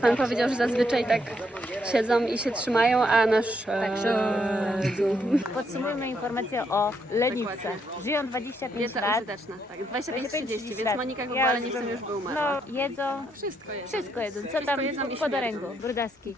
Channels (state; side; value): normal; both; correlation 0.75